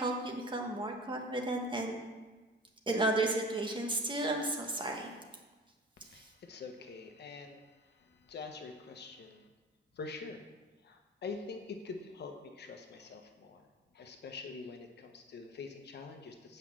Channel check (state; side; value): normal; both; correlation 0.38